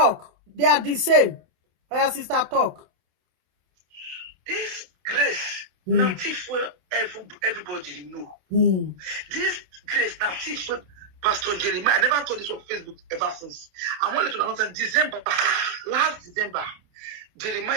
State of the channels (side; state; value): left; late; 27 ms